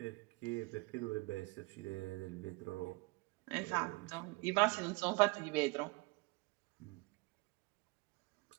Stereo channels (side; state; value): left; quieter; 26.1 dB